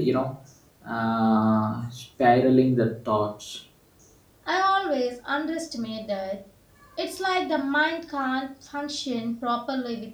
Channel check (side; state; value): both; identical; correlation 1.00